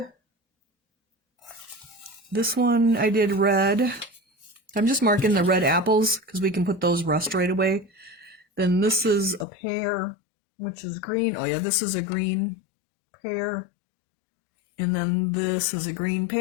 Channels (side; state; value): right; drops out; at 9.5 s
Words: This one I did red. I'm just marking the red apples because we can put those rust right away. Then this is a pear, which is green. Oh yeah, this is a green pear. And then this is a green